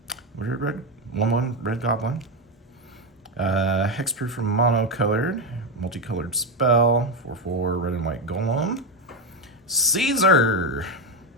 red 1/1 red goblin. Hexproof from monocolored, multicolored spell, 4/4 red and white golem. Caesar.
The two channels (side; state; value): both; normal; correlation 0.10